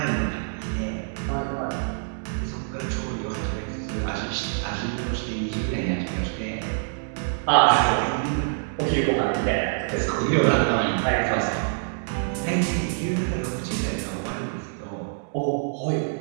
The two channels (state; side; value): silent; left; digital silence